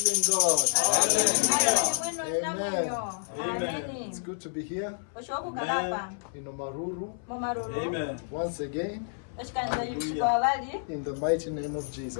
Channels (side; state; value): right; silent; 58 dB below the other